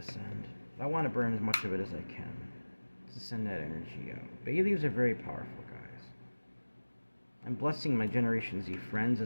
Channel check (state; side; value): inverted; both; correlation -1.00